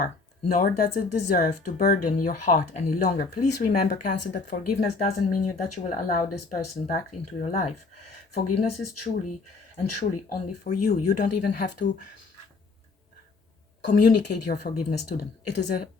nor does it deserve to burden your heart any longer. Please remember, Cancer, that forgiveness doesn't mean that you will allow this person back into your life. Forgiveness is truly and truly only for you. You don't even have to communicate your forgiveness to them. It is a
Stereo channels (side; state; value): right; quieter; 4.0 dB